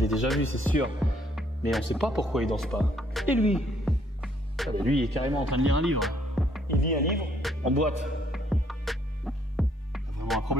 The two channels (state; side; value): normal; both; correlation 0.67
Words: déjà vu, c'est sûr. Mais on ne sait pas pourquoi il danse pas. Et lui? Regardez, lui il est carrément en train de lire un livre. Il lit un livre en boîte. C'est vraiment un